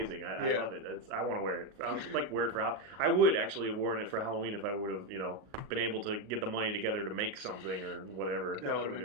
I love it. I want to wear it. I would like wear it for I would actually have worn it for Halloween if I would have, been able to get the money together to make something or whatever. That would have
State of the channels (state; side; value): late; left; 38 ms